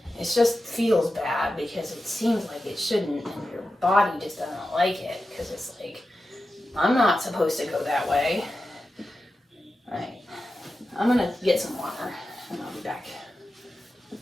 It just feels bad because it seems like it shouldn't, and your body just doesn't like it because it's like, I'm not supposed to go that way. All right, I'm gonna get some water and I'll be back.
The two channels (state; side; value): normal; both; correlation 0.92